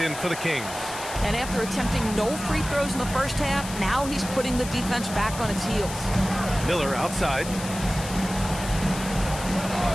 in for the Kings. And after attempting no free throws in the first half, now he's putting the defense back on its heels. Miller outside.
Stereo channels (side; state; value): left; noise; hiss, 10 dB below the sound